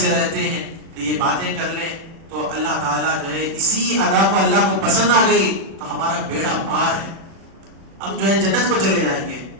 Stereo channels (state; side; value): late; left; 37 ms